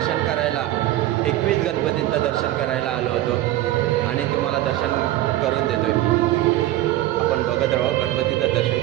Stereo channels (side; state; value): left; quieter; 15.0 dB